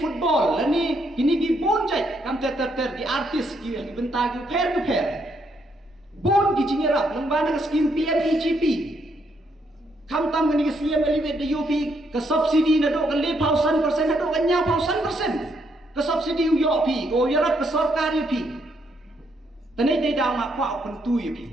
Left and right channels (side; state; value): both; normal; correlation 0.75